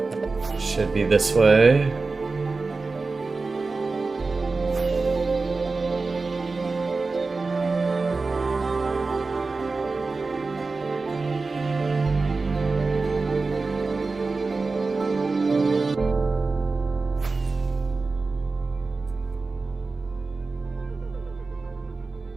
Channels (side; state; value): left; quieter; 3.9 dB